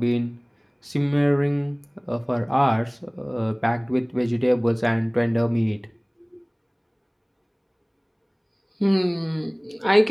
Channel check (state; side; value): identical; both; correlation 1.00